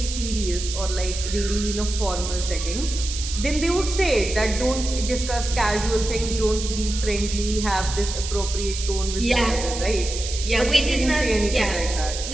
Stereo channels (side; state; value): right; noise; hiss, 7 dB below the sound